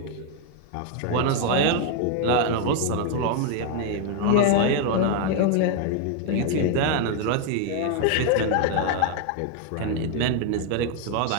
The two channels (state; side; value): different; both; correlation 0.01